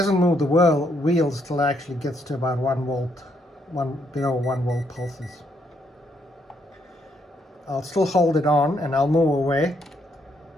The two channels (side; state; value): both; normal; correlation 0.74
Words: move the wheels till it actually gets to about 1 volt, below 1 volt pulses. I'll still hold it on and I'll move away,